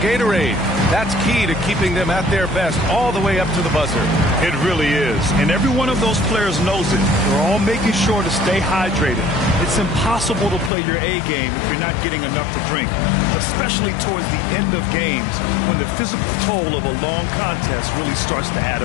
That's key to keeping them at their best all the way up to the buzzer. It really is. And every one of those players knows it. They're all making sure to stay hydrated. It's impossible to play your A game if you're not getting enough to drink, especially towards the end of games when the physical toll of a long contest really starts to add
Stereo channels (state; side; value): drops out; right; at 10.7 s